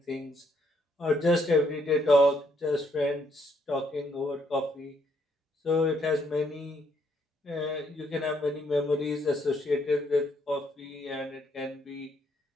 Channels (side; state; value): both; normal; correlation 0.71